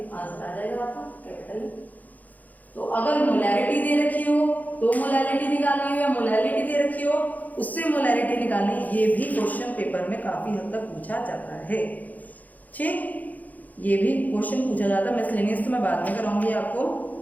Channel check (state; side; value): late; right; 0.080 ms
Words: आंसर आ जाएगा आपका कैपिटल। तो अगर मोलैरिटी दे रखी हो तो मोलैरिटी निकालनी हो, या मोलैरिटी दे रखी हो उससे मोलैरिटी निकालनी, ये भी क्वेश्चन पेपर में काफी हद तक पूछा जाता है। ठीक, ये भी क्वेश्चन पूछा जाता है। मिसलेनियस तो मैं बाद में कराऊंगी आपको,